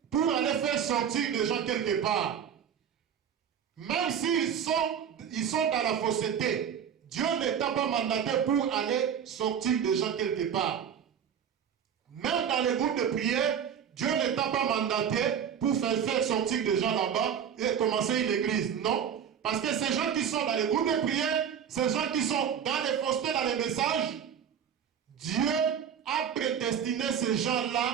pour aller faire sortir les gens quelque part. Même s'ils sont dans la fausseté, Dieu ne t'a pas mandaté pour aller sortir des gens quelque part. Même dans les groupes de prière, Dieu ne t'a pas mandaté pour faire sortir des gens là-bas et commencer une église. Non. Parce que ces gens qui sont dans les groupes de prière, ces gens qui sont dans les faussetés, dans les messages, Dieu a prédestiné ces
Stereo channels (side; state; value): left; quieter; 8.3 dB